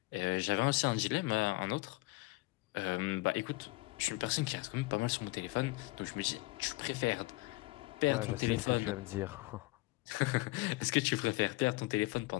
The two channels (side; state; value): right; quieter; 22.1 dB